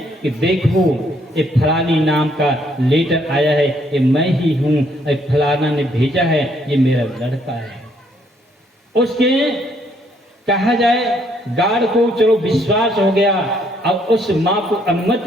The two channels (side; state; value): both; normal; correlation 0.69